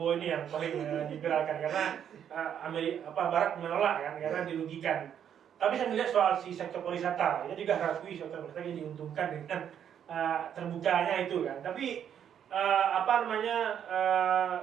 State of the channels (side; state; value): left; quieter; 9.0 dB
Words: ini yang paling diviralkan karena Barat menolak kan karena dirugikan. Tapi saya melihat soal si sektor pariwisata, itu juga harus sektor pariwisata yang diuntungkan dengan terbukanya itu kan. Tapi